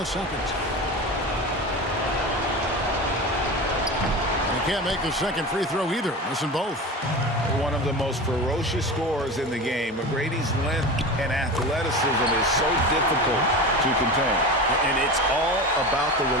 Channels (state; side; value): normal; both; correlation 0.28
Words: second. Can't make the second free throw either. Missing both. One of the most ferocious scorers in the game. McGrady's length and athleticism is so difficult to contain. And it's all about the